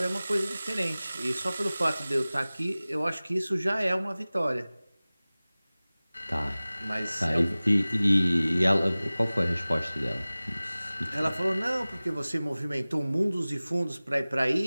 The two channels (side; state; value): both; inverted; correlation -0.99